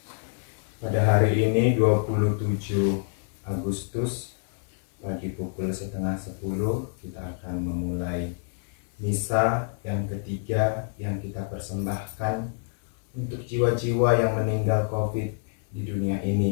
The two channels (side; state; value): right; silent; 60 dB below the other